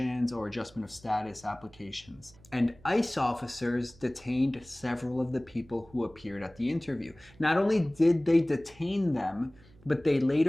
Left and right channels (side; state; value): right; noise; hum, 25 dB below the sound